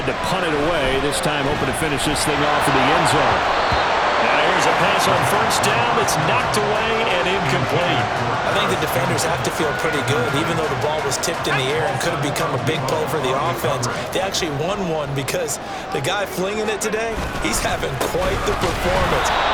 to punt it away. This time hoping to finish this thing off in the end zone. Now here's a pass on first down that's knocked away and incomplete. I think the defenders have to feel pretty good. Even though the ball was tipped in the air and could have become a big play for the offense, they actually won one because the guy flinging it today, he's having quite the performance.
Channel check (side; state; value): both; identical; correlation 1.00